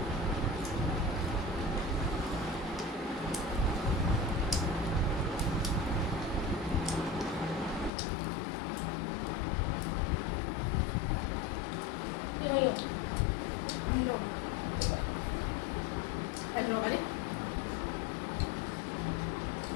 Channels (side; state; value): right; drops out; at 7.9 s